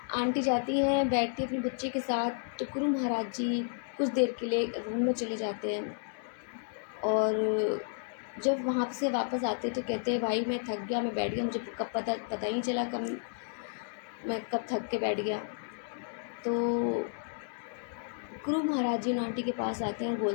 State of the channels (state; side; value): silent; right; digital silence